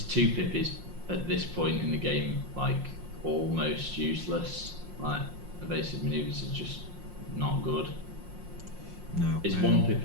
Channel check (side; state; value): left; late; 5.6 ms